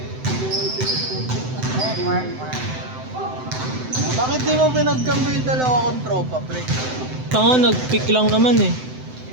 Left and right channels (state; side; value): late; left; 7.8 ms